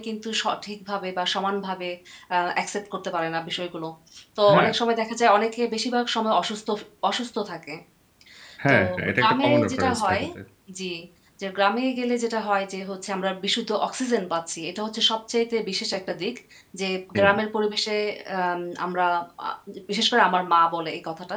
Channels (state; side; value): identical; both; correlation 1.00